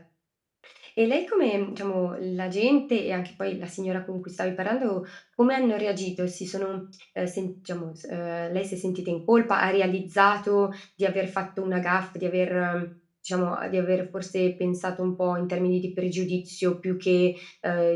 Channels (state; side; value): identical; both; correlation 1.00